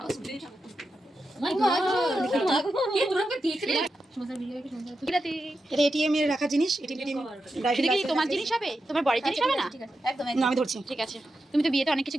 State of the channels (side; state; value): both; normal; correlation 0.89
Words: এটা ATM এর রাখা জিনিস। এটা কি তোমার জিনিস হবে? তোমার বড়ির জিনিস হবে না? না, আমি ধরছি। ঠিক আছে, তুমি তো বিয়েতে অনেক